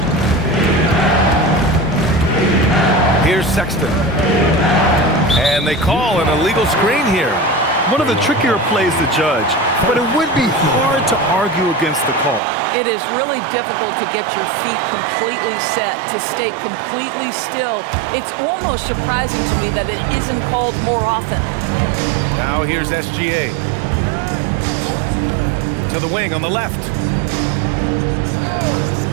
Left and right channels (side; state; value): left; drops out; at 12.4 s